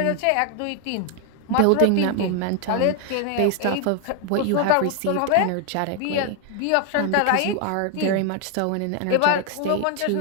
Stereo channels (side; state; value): both; different; correlation 0.00